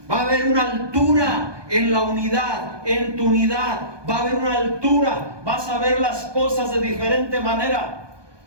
va a haber una altura en la unidad, en tu unidad. Va a haber una altura, vas a ver las cosas de diferente manera.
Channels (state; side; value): late; left; 1.2 ms